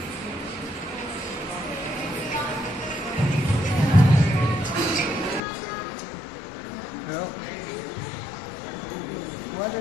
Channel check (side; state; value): right; drops out; at 5.4 s